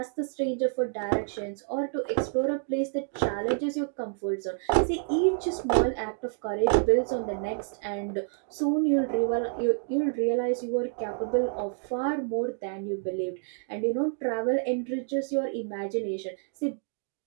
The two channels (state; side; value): silent; left; 59 dB below the other